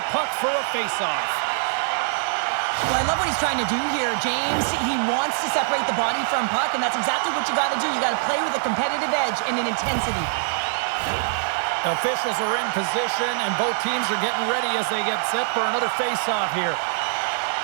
puck for a faceoff. Well, I love what he's trying to do here, James. He wants to separate the body from puck, and that's exactly what you got to do. You got to play with a competitive edge and an intensity. Officials are in position, and both teams are getting ready as they get set for another faceoff here.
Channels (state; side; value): silent; left; digital silence